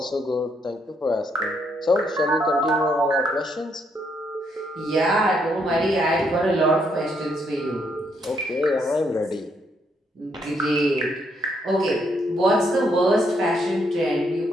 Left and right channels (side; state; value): both; normal; correlation 0.74